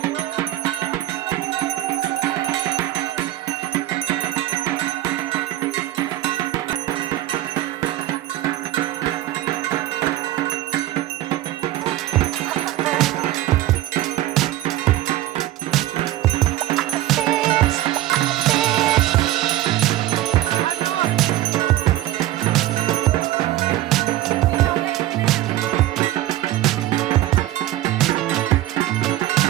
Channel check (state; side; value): quieter; left; 14.8 dB